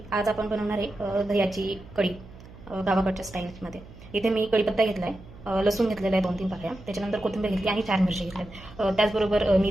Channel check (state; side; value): noise; right; hum, 19 dB below the sound